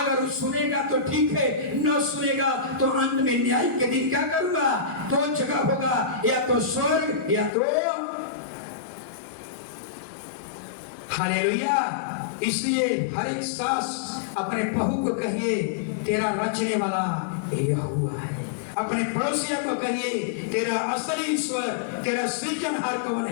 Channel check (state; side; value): drops out; right; at 7.5 s